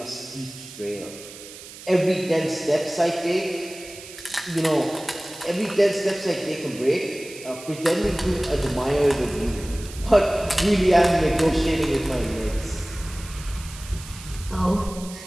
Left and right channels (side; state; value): right; noise; hiss, 15 dB below the sound